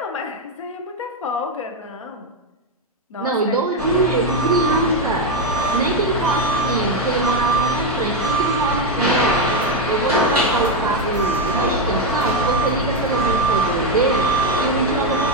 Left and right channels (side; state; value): both; normal; correlation 0.06